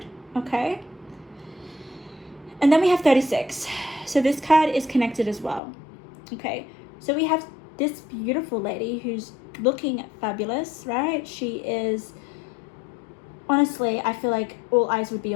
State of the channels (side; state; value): right; drops out; at 5.6 s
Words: okay? And then we have 36. So this card is connected as well, okay? So we have this beautiful lady who's looking fabulous, right? She is, honestly, I feel like all eyes would be